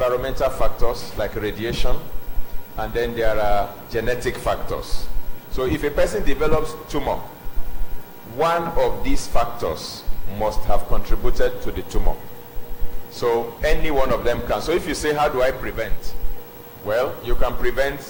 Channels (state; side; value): identical; both; correlation 1.00